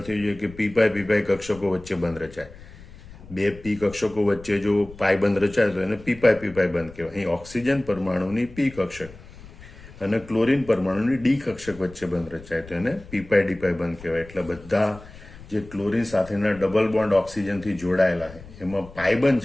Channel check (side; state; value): left; noise; rumble, 19 dB below the sound